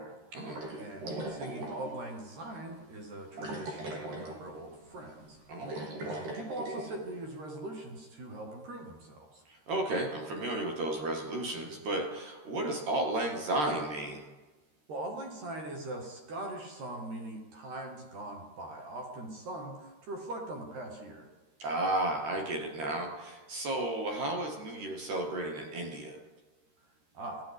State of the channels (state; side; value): late; left; 13 ms